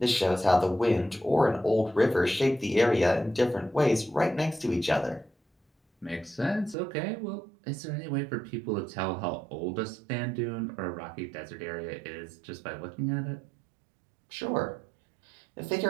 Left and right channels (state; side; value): drops out; left; at 6.8 s